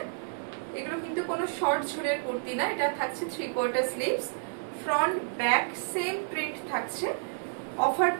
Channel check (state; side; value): silent; left; digital silence